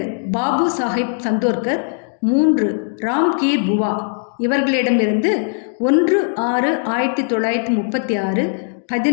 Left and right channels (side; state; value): right; silent; 62 dB below the other